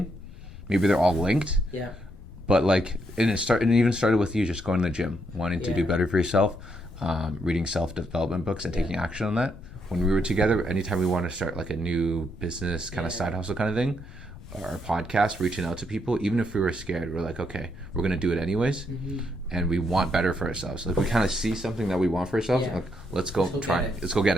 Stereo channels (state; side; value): noise; left; rumble, 16 dB below the sound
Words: Maybe they're all linked. Yeah. But like, and it even started with you just going to the gym, wanting to do better for yourself, reading self-development books and taking action on that. When we were together, anytime we wanted to start like a new business kind of side hustle kind of thing, our podcast, reaching out to people, even if we were scared, we're like, okay, we're gonna do it anyways, and we want better for ourselves. Like we kind of see something that we want for ourselves, like let's go try it. Let's go get